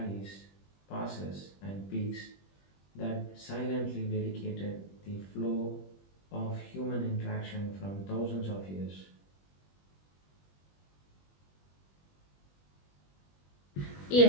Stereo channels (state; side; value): late; right; 21 ms